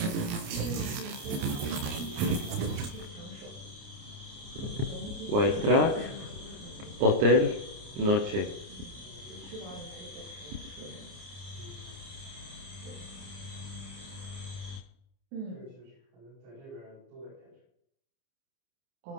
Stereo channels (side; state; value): left; late; 29 ms